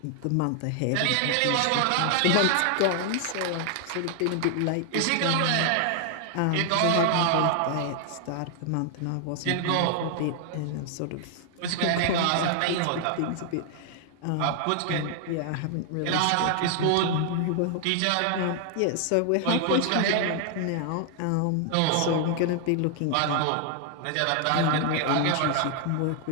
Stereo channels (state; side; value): different; both; correlation 0.00